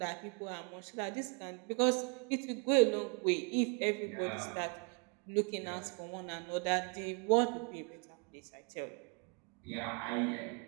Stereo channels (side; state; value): left; quieter; 36.3 dB